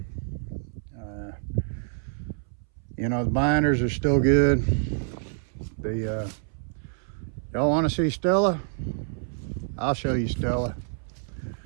You know, the binders are still good. Y'all want to see Stella? I'll show you Stella.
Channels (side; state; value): left; silent; 60 dB below the other